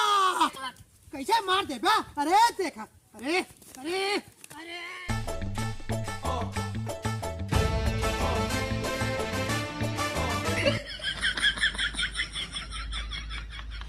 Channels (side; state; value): both; identical; correlation 1.00